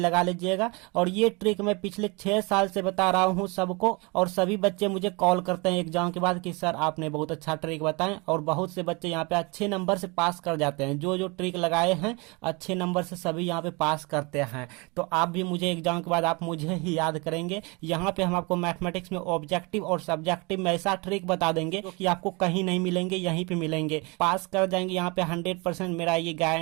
लीजिएगा। और ये ट्रिक मैं पिछले 6 साल से बता रहा हूँ सबको, और सभी बच्चे मुझे कॉल करते हैं एग्जाम के बाद कि सर आपने बहुत अच्छा ट्रिक बताएं, और बहुत से बच्चे यहाँ पे अच्छे नंबर से पास कर जाते हैं। जो जो ट्रिक लगाए हैं अच्छे नंबर से सभी यहाँ पे पास करते हैं। तो आप भी मुझे एग्जाम के बाद आप मुझे ही याद करेंगे। यहाँ पे हम आपको मैथमेटिक्स में ऑब्जेक्टिव और सब्जेक्टिव में ऐसा ट्रिक बता देंगे जो कि आपको कहीं नहीं मिलेंगे, यहीं पे मिलेंगे। पास कर जाएंगे यहाँ पे 100%, मेरा ये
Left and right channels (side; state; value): left; quieter; 28.5 dB